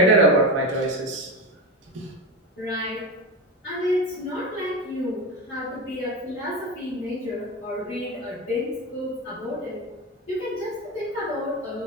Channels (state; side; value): normal; both; correlation 0.21